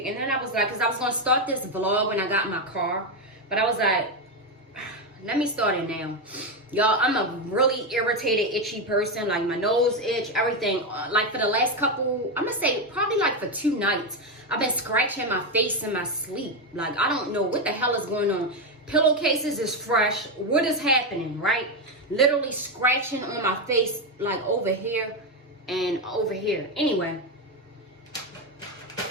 and then I was like, because I was going to start this vlog when I got in my car, but I was like, let me start it now. Y'all, I'm a really irritated, itchy person. Like, my nose itch, everything. Like, for the last couple, I'm going to say probably like for 2 nights, I've been scratching my face in my sleep. Like, I don't know what the hell is going on. Pillowcases is fresh. What is happening, right? Literally scratching on my face, like over here and over here. Anyway.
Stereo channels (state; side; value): normal; both; correlation 0.09